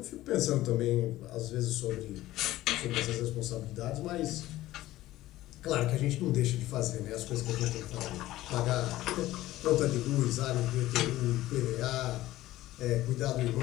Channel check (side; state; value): right; quieter; 15.9 dB